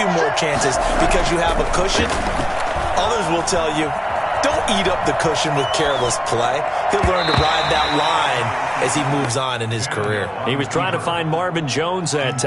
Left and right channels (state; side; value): identical; both; correlation 1.00